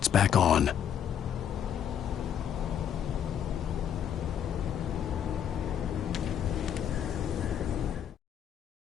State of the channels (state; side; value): quieter; right; 9.1 dB